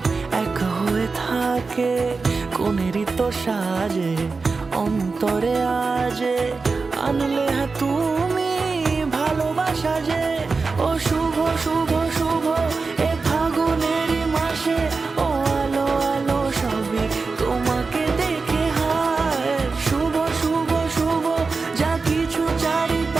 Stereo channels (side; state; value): left; quieter; 4.3 dB